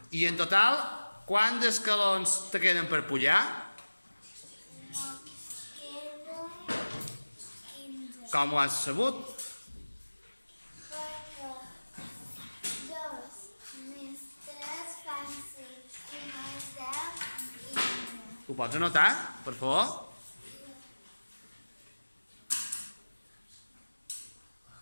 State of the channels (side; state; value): both; inverted; correlation -1.00